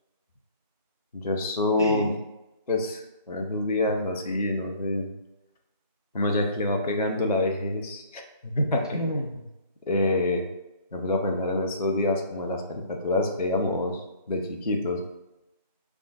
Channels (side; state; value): both; inverted; correlation -0.52